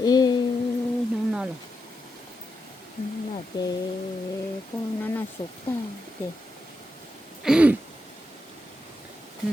nó non rồi nó là cái nó sụp ta thì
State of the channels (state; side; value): normal; both; correlation 0.86